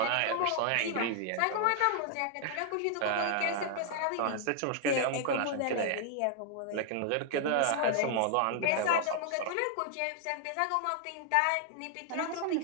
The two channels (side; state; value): both; different; correlation 0.00